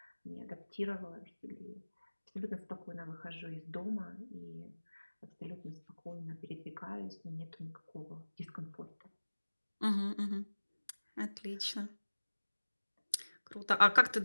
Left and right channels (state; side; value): inverted; both; correlation -1.00